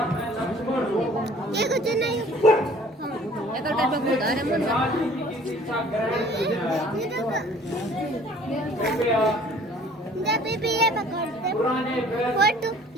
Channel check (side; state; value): both; normal; correlation 0.53